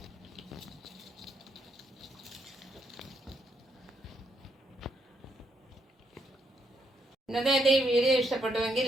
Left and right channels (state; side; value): normal; both; correlation 0.77